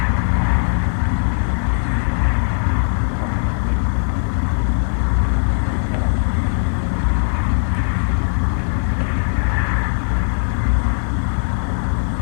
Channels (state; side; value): silent; right; digital silence